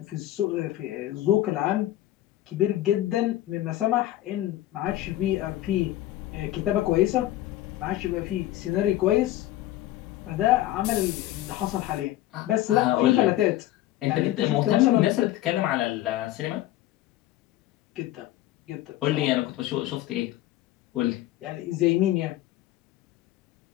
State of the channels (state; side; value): quieter; right; 14.7 dB